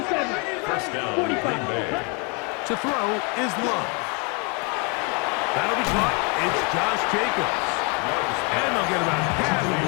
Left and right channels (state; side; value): quieter; right; 33.2 dB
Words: 1st down, 45. Green Bay. To throw is Love. That'll be caught. It's Josh Jacobs. And they'll get about half of